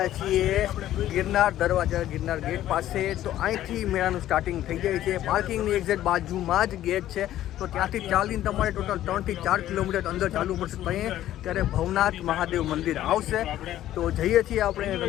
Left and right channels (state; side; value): quieter; right; 13.1 dB